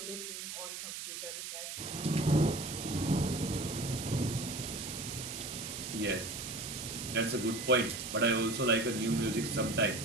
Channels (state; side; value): noise; right; hiss, 7 dB below the sound